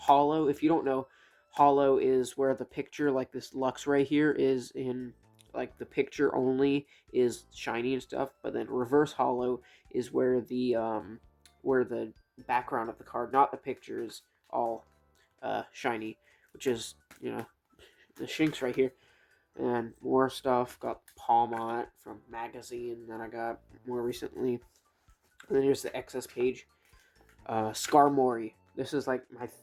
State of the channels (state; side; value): identical; both; correlation 1.00